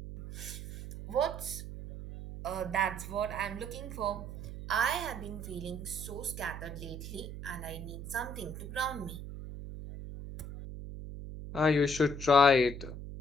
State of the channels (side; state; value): right; noise; hum, 9 dB below the sound